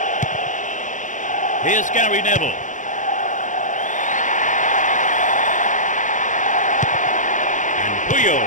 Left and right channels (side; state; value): right; late; 0.37 ms